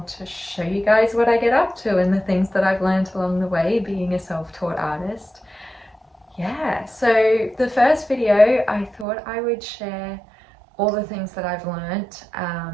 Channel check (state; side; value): drops out; left; at 9.1 s